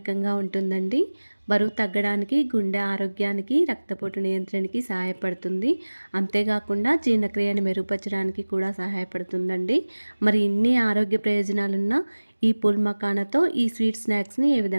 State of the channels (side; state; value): both; inverted; correlation -1.00